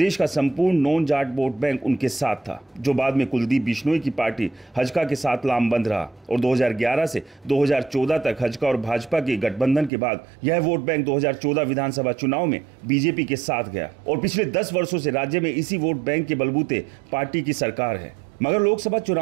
का संपूर्ण नॉन जाट वोट बैंक उनके साथ था, जो बाद में कुलदीप बिश्नोई की पार्टी हजका के साथ लामबंद रहा और 2011 से 2014 तक हजका और भाजपा के गठबंधन के बाद यह वोट बैंक 2014 विधानसभा चुनाव में बीजेपी के साथ गया और पिछले 10 वर्षों से राज्य में इसी वोट बैंक के बलबूते पार्टी की सरकार है। मगर लोकसभा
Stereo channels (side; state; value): left; drops out; at 9.9 s